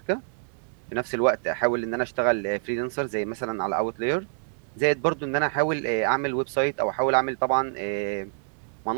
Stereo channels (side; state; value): left; silent; digital silence